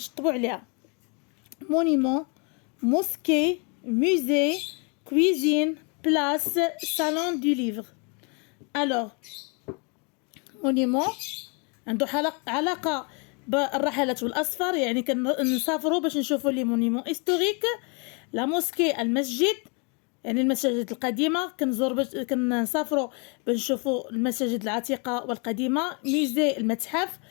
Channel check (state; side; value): quieter; right; 34.7 dB